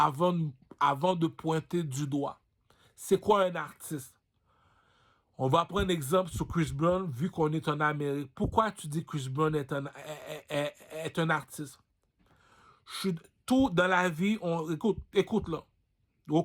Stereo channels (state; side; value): identical; both; correlation 1.00